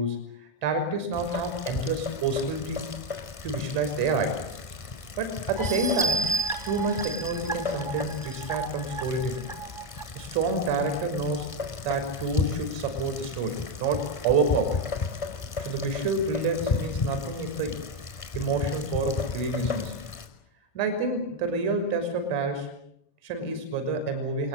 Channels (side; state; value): right; late; 1.5 ms